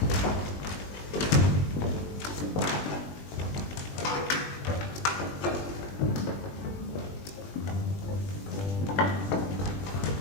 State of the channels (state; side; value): late; right; 20 ms